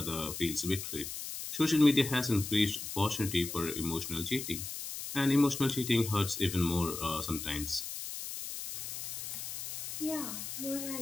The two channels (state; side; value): noise; left; hiss, 7 dB below the sound